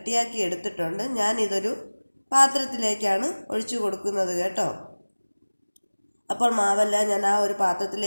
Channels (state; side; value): inverted; both; correlation -1.00